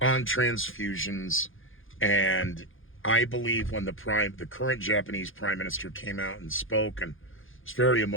transfusions, and I believe when the current Japanese prime minister came out and spoke, and it's a very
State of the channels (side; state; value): right; late; 0.58 ms